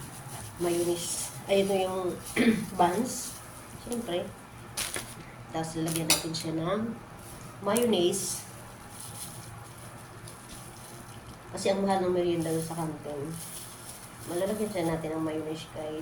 mayonnaise. Ay, ito yung buns. Siyempre. Tapos lalagyan natin siya ng mayonnaise. Kasi ang mahal ng merienda sa kantin. Malalagyan siya natin ng mayonnaise,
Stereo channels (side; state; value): both; identical; correlation 1.00